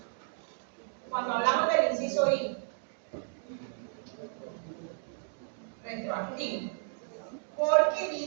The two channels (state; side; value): silent; left; digital silence